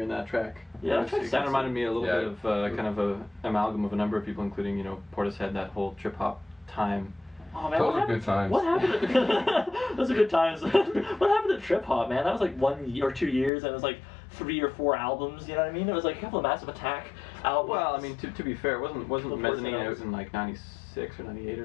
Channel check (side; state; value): right; drops out; at 13.5 s